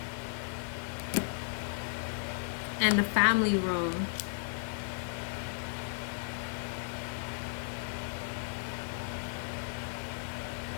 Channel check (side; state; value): right; silent; digital silence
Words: and the family room.